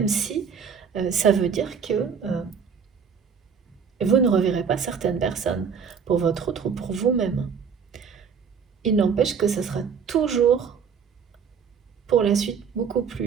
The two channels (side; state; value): left; quieter; 6.5 dB